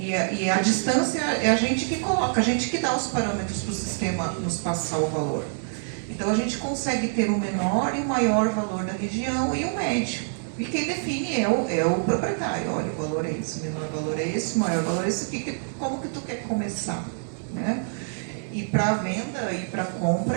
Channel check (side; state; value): left; silent; 61 dB below the other